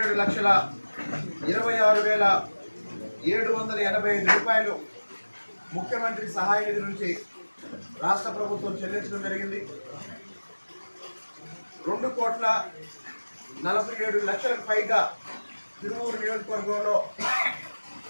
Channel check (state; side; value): inverted; both; correlation -1.00